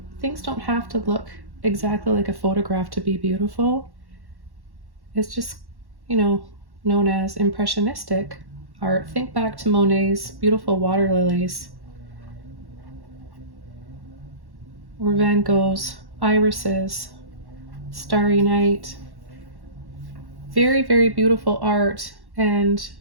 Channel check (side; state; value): left; late; 1.1 ms